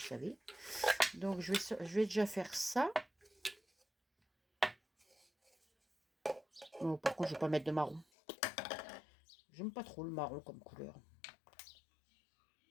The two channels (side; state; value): right; drops out; at 8.1 s